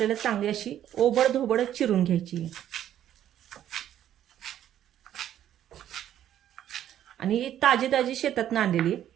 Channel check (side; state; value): left; quieter; 11.2 dB